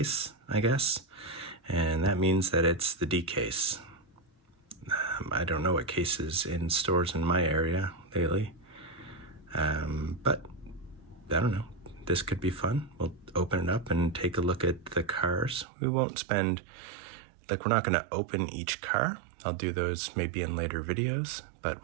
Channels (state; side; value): drops out; left; at 15.7 s